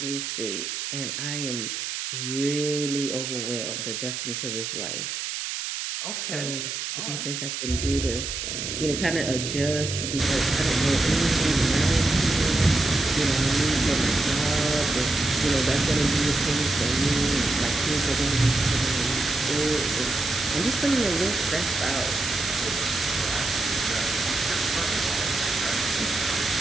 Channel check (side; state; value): right; noise; hiss, 4 dB below the sound